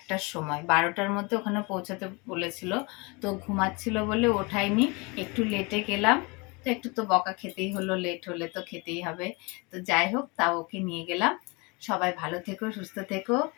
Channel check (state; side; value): quieter; right; 28.2 dB